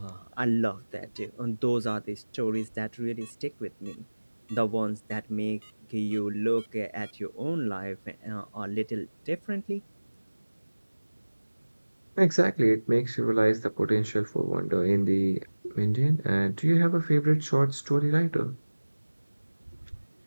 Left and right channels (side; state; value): both; inverted; correlation -1.00